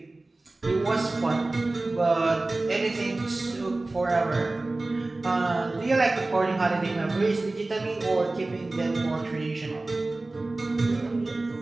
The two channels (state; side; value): quieter; left; 3.0 dB